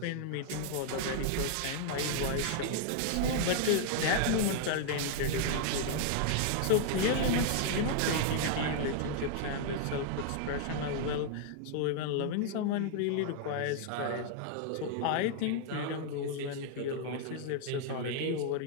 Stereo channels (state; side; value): different; both; correlation 0.00